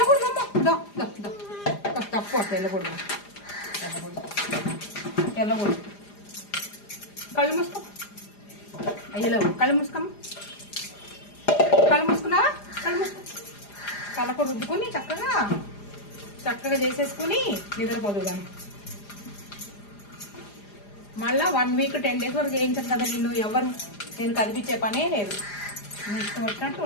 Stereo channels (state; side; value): late; right; 4.9 ms